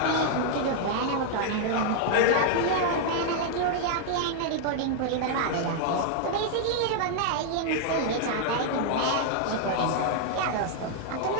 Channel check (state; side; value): different; both; correlation 0.00